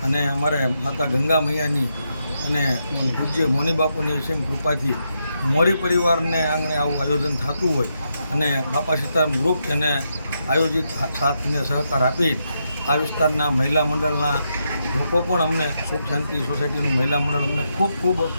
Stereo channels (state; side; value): inverted; both; correlation -0.82